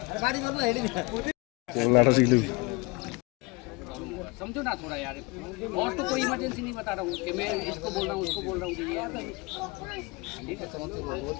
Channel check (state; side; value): quieter; right; 26.6 dB